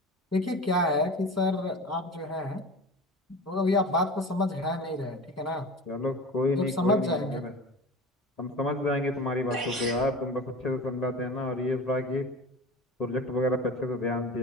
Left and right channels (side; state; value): both; normal; correlation 0.33